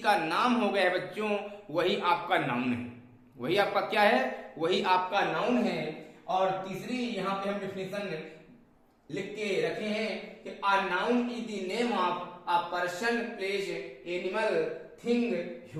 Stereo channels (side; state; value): both; identical; correlation 1.00